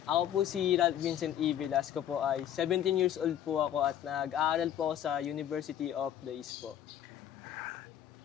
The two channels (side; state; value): right; quieter; 10.6 dB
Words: Ako po si Ralph Vincent E. Velasco po ay 17 years old po ako at nag-aaral po ako sa University of the East po.